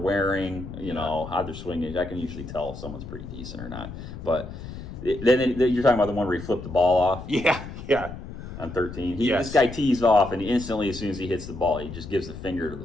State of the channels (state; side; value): noise; left; rumble, 11 dB below the sound